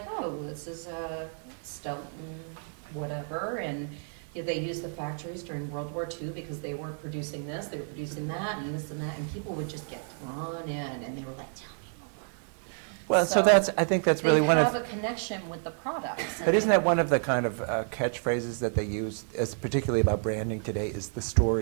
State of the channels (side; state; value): left; silent; 55 dB below the other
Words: oh, this is a Stelton whatever, and they used the factories during World War II because they weren't producing this, they were producing that, and this and that, and people would just get drawn in, and they were like, tell me more. Well, so I think that's really one They of. have a connection with the products. But isn't that one of the kind of catchphrases that they use, as particularly about branding today, is the